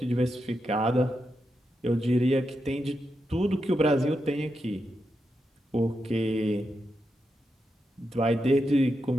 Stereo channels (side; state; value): both; normal; correlation 0.86